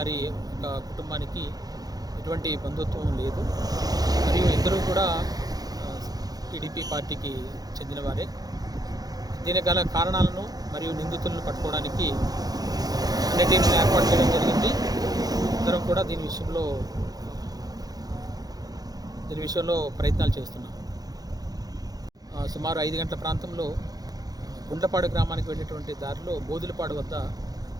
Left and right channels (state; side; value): late; left; 0.19 ms